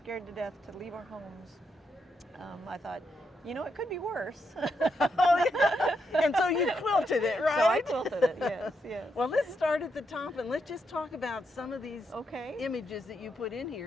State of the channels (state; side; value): normal; both; correlation 0.81